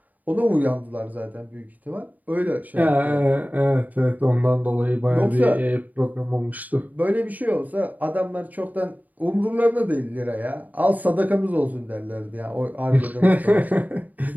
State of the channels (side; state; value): left; late; 0.079 ms